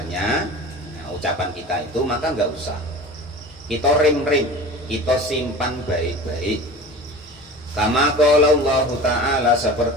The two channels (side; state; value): both; normal; correlation 0.37